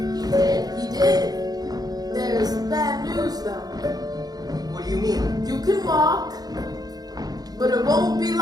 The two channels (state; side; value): late; left; 0.19 ms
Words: He did. There's bad news though. What do you mean? You can walk, but it won't be